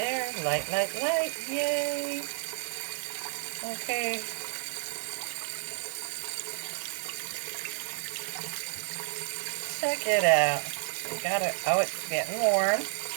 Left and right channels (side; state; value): left; silent; 57 dB below the other